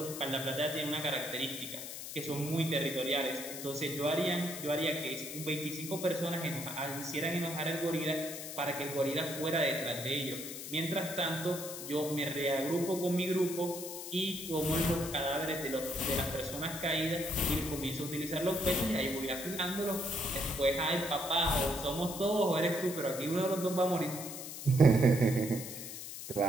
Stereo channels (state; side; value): noise; left; hiss, 9 dB below the sound